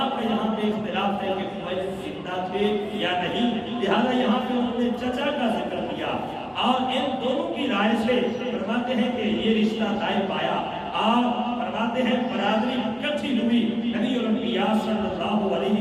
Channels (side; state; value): both; identical; correlation 1.00